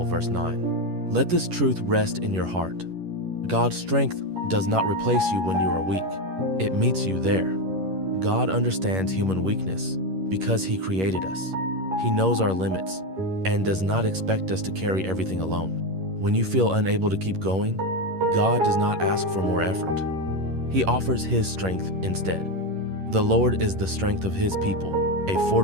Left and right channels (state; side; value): late; left; 11 ms